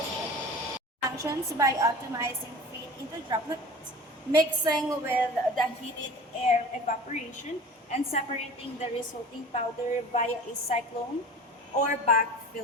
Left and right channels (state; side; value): normal; both; correlation 0.39